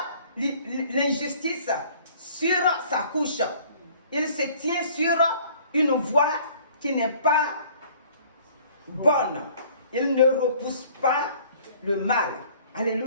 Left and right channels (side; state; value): both; inverted; correlation -0.54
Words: l'injustice sur sa couche. Il se tient sur une voie qui n'est pas bonne. Il ne repousse pas le mal.